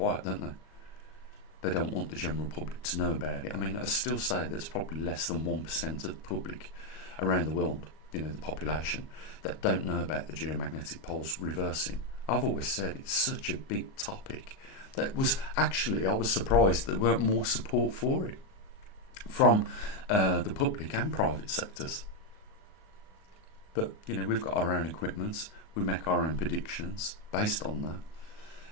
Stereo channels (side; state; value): right; late; 37 ms